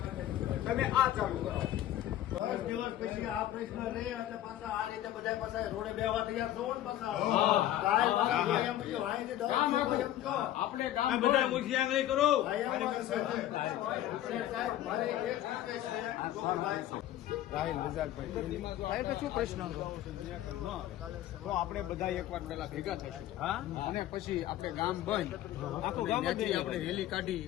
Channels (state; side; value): quieter; right; 13.1 dB